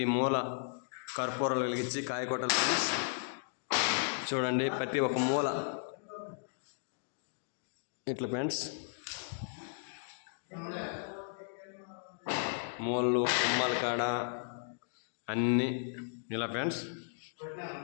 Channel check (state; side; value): silent; right; digital silence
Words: మూల కర్పూరాలు వెలిగించి కాయకొట్టలు ఫ్రెండ్స్. చూడండి ప్రతి ఒక్క మూల ఇట్లా ఫ్రెండ్స్. మూలలు కుమ్మల కాడ అన్నీ ఇలా ఫ్రెండ్స్